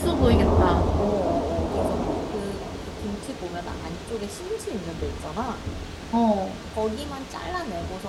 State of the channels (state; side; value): identical; both; correlation 1.00